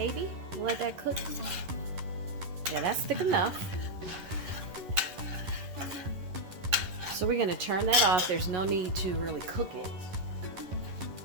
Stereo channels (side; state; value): left; late; 11 ms